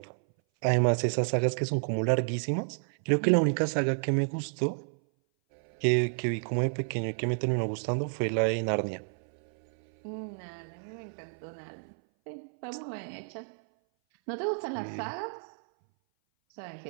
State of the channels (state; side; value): silent; left; 58 dB below the other